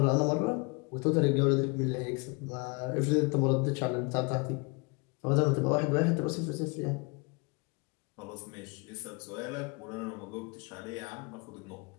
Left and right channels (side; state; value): right; quieter; 30.8 dB